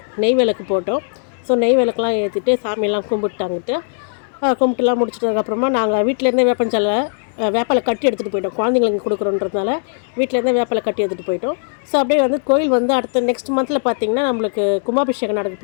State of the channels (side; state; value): right; silent; 67 dB below the other